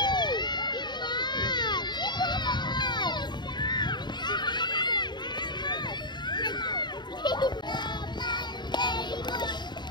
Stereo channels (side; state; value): right; late; 0.21 ms